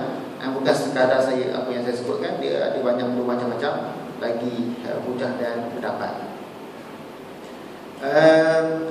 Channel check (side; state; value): both; identical; correlation 1.00